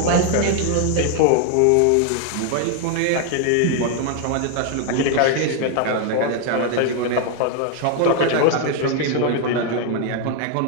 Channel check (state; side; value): different; both; correlation 0.00